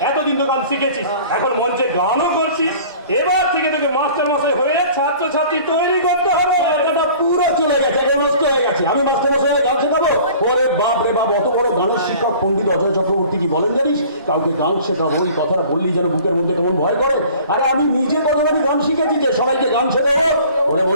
এতদিন তো গান শিখেছিস, এখন মঞ্চে গানও করছিস, এবার থেকে তোকে মাস্টার মশাই হয়ে ছাত্র ছাত্রী তৈরি করতে হবে। এটা পুরো চলে গেছে, এখন নষ্ট হয়ে গেছে। আমি মাস্টার মশাই গান শেখাবো? ওরে বাপ রে বাপ, অত বড় গানের শিক্ষক পণ্ডিত অজয় চক্রবর্তী কি বলেন জানিস? কাউকে গান শেখাবো, এই কথাটা বললি যেন বুকের মধ্যে কেমন ভয় করে। আরে আমি নিজে কতবারই গান শিখেছি যে সবাইকে গান শেখাবো। ওরে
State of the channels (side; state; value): both; inverted; correlation -0.47